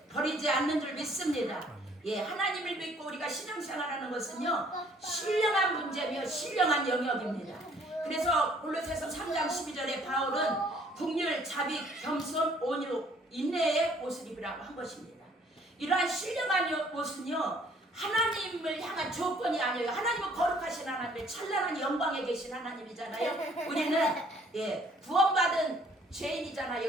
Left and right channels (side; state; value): both; normal; correlation 0.60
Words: 버리지 않는 줄 믿습니다. 예, 하나님을 믿고 우리가 신앙생활하는 것은요 신령한 문제며 신령한 영역입니다. 그래서 골로새서 3장 12절에 바울은 긍휼, 자비, 겸손, 온유, 인내의 옷을 입으라고 한 것입니다. 이러한 신령한 옷은요 하나님을 향한 조건이 아니에요. 하나님은 거룩하신 하나님, 찬란한 영광에 계신 하나님이잖아요. 우리는 구원받은